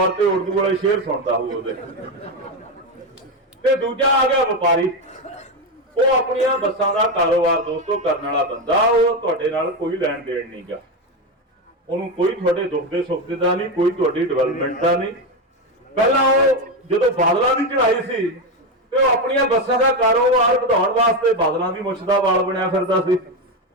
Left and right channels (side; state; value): both; normal; correlation 0.12